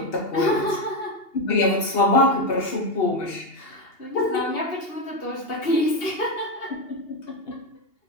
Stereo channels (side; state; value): right; late; 2.8 ms